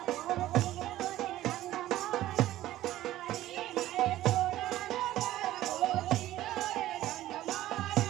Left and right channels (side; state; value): left; quieter; 14.5 dB